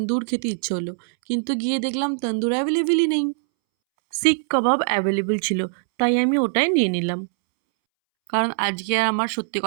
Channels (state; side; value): silent; left; 64 dB below the other